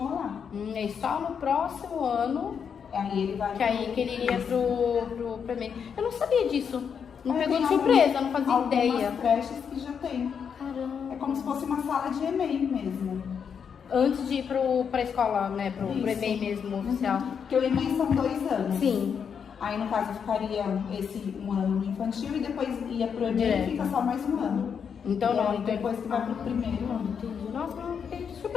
lá. E só no próximo ano aí ele vai que ele iria pro EMEI. Eu não sabia disso. Não pegou de surpresa, não fazia ideia. Algumas creches que já tem. Caramba. É como se fosse uma sala de EMEI mesmo. Antes de ir pra escola, né? Pro EMEI mesmo, oficial. Porque o EMEI são 2 anos. Sim. Aí, no caso, ficaria esse um ano no infantil e depois ia pro EMEI e fica só mais um ano. Então não, então depois que vai pro primeiro ano. Entendi. Nossa, fiquei de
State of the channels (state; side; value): quieter; right; 7.0 dB